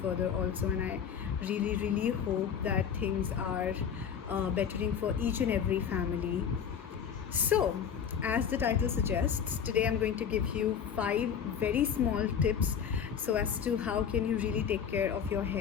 further also. And I really hope that things are bettering for each and every family. So, as the title suggests, today I'm going to give you 5 very small tips so as to how can you really take care of your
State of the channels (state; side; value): quieter; right; 7.8 dB